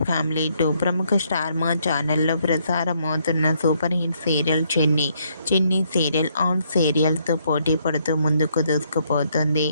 family 2. ప్రముఖ star మా ఛానల్లో ప్రసారమవుతున్న సూపర్ హిట్ సీరియల్ చిన్ని సీరియల్ ఆన్ సీరియల్తో పోటీ పడుతూ ముందుకు దూసుకుపోతుంది.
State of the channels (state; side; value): inverted; both; correlation -0.72